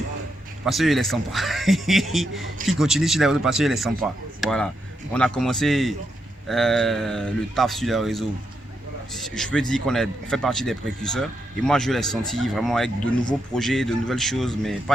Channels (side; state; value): both; normal; correlation 0.82